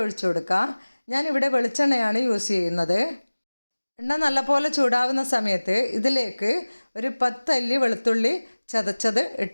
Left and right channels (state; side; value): inverted; both; correlation -1.00